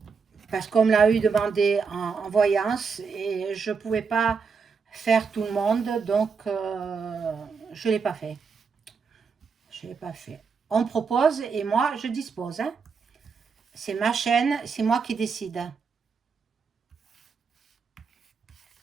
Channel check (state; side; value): quieter; left; 5.4 dB